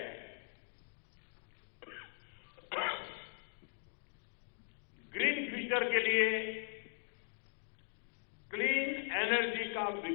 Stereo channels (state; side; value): silent; right; digital silence